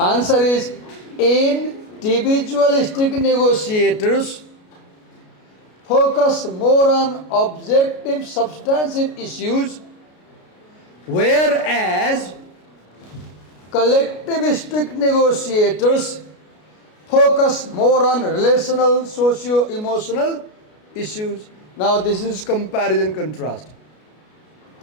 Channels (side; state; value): right; late; 33 ms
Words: is, individualistic negotiators focus more on objective, substantive issues, whereas collectivistic negotiators focus more on relational, socio-emotional issues. Now this is comparison contrast.